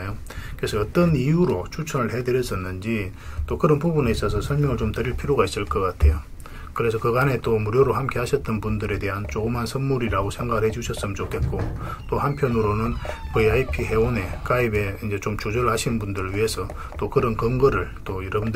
그래서 어떤 이유로 추천을 해드렸었는지 또 그런 부분에 있어서 설명을 좀 드릴 필요가 있을 것 같아요. 그래서 그간에 또 무료로 함께 하셨던 분들에 대한 조그만 선물이라고 생각을 해주셨으면 좋겠고, 또 한편으로는 VIP 회원에 가입에 이제 좀 조절하신 분들을 위해서 또 그런 근거를 또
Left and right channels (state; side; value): identical; both; correlation 1.00